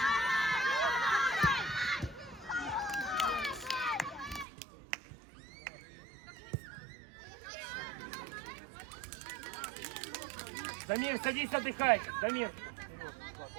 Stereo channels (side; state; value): left; drops out; at 4.5 s